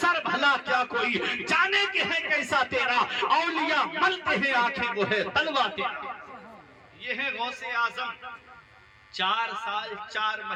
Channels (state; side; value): identical; both; correlation 1.00